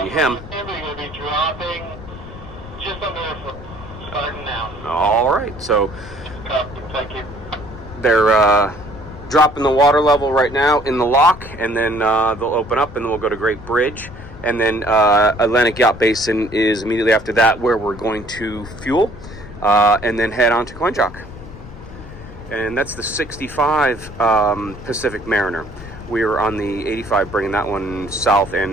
him. All right, so they're dropping the water level right now in the lock, and then they'll open up, and then we'll go to Great Bridge, and then Atlantic Yacht Basin is immediately after that, where we're going to fuel, and then head on to Coinjock. And that's the 65 Pacific Mariner. We were on the 85, bringing that one south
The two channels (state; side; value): noise; left; rumble, 15 dB below the sound